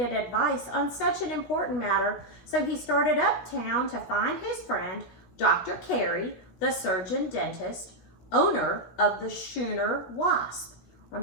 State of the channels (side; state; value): right; late; 17 ms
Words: advice on such an important matter, so he started uptown to find his friend, Dr. Carey, the surgeon dentist, owner of the schooner Wasp.